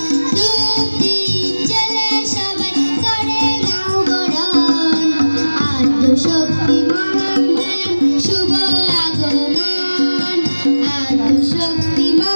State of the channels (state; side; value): inverted; both; correlation -1.00